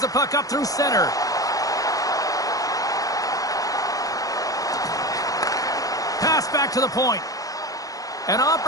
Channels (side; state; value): right; late; 0.17 ms